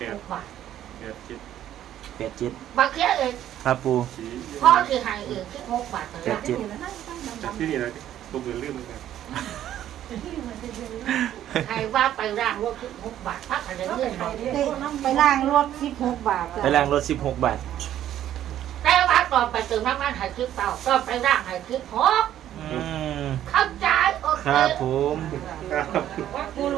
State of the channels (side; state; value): left; quieter; 11.6 dB